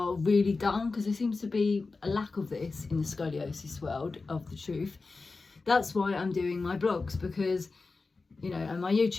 really done, because there seems to be a lack of this in the scoliosis world of the truth. That's why I'm doing my blogs, because, and my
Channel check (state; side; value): quieter; right; 3.9 dB